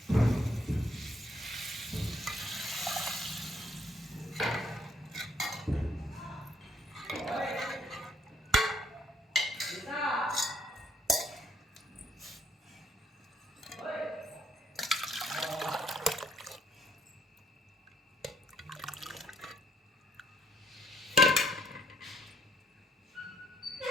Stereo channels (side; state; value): both; normal; correlation 0.68